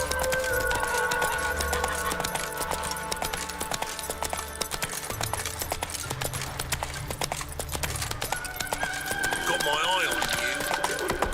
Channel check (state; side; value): identical; both; correlation 1.00